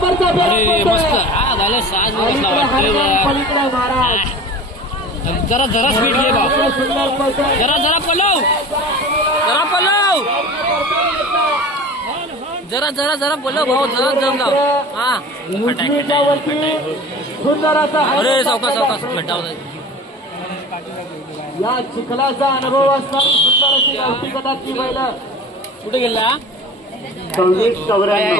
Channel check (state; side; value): normal; both; correlation 0.37